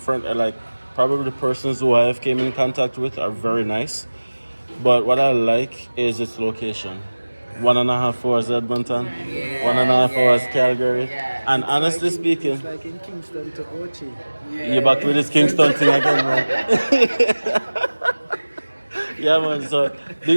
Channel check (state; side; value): inverted; both; correlation -1.00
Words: I like probably the persons who I have came in contact with are very nice. But what I like is its location. 1.5 hours Edmonton, Yeah, 1.5 hours yeah, Calgary. yeah. And honestly It's speaking, like in Kingston to Ochi. you're back with this Kingston thing again, man. Yeah, man. So big